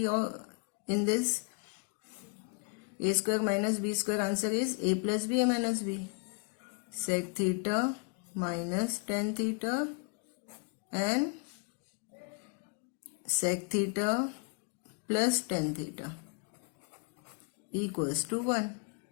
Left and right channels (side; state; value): right; quieter; 32.7 dB